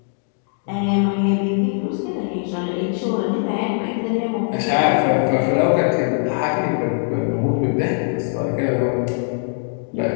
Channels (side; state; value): right; silent; digital silence